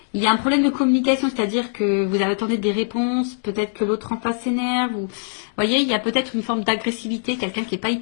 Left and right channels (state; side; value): silent; right; digital silence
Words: il y a un problème de communication, c'est-à-dire que vous attendez des réponses, peut-être que l'autre en face s'énerve, ou vous voyez, il y a peut-être une forme d'agressivité, quelqu'un qui n'est pas